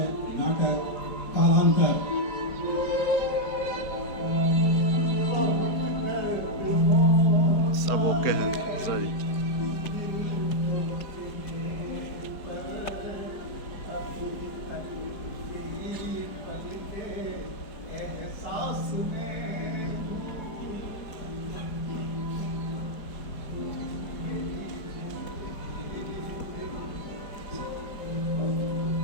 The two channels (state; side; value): late; right; 4.6 ms